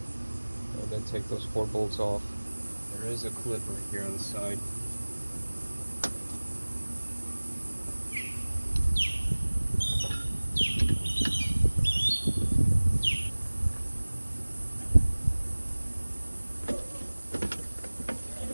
And and take those 4 bolts off. There is a clip right here on the side.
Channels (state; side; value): inverted; both; correlation -1.00